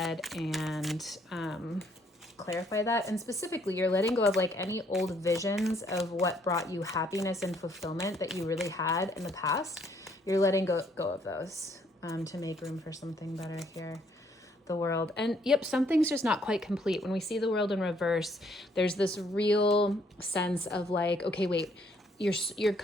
and clarify that. And specifically, you're letting go of like any old visions of what brought you happiness and fulfillment that you really had in the past. You're letting go of those to make room for something better here. The world. And yep, something's just not quite complete. When we see the world in reverse, there's this real sense of like, okay, wait,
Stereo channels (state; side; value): normal; both; correlation 0.67